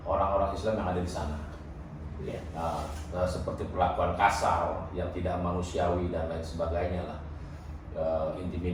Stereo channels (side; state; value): both; identical; correlation 1.00